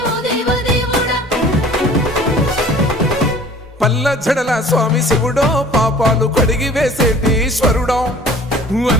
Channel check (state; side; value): normal; both; correlation 0.48